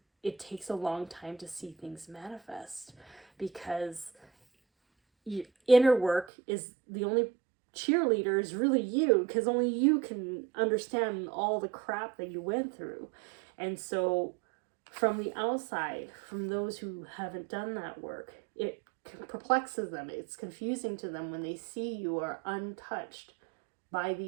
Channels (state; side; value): drops out; left; at 6.2 s